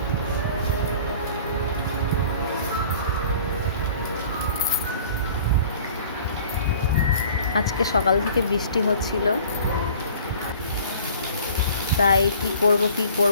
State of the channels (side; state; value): both; inverted; correlation -0.48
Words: আজকে সকাল থেকে বৃষ্টি হচ্ছিল, তাই কি করব,